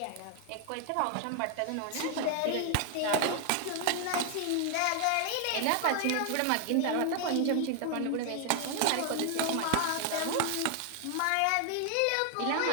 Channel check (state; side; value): different; both; correlation 0.00